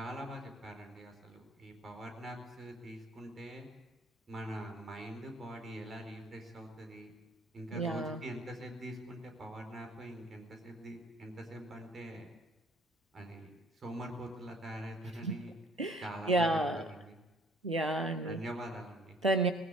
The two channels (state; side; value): normal; both; correlation 0.57